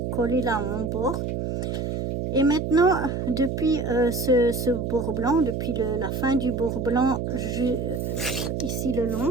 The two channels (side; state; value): right; noise; hum, 2 dB below the sound